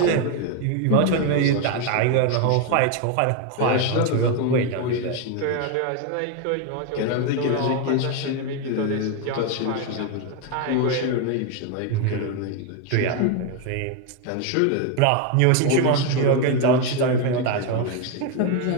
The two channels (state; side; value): different; both; correlation 0.01